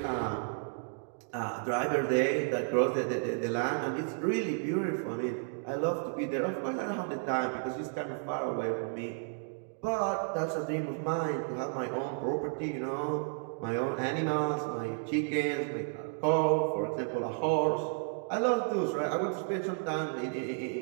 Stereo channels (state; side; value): silent; left; 56 dB below the other